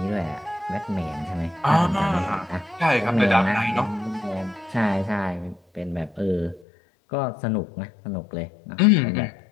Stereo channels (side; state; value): right; drops out; at 6.7 s